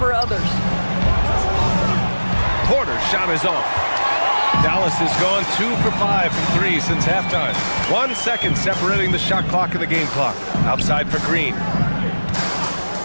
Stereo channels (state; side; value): inverted; both; correlation -1.00